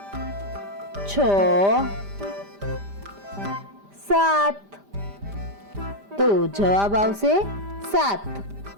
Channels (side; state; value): left; late; 5.0 ms